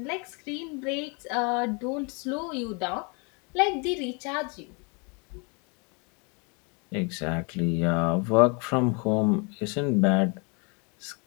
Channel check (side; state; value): right; quieter; 33.0 dB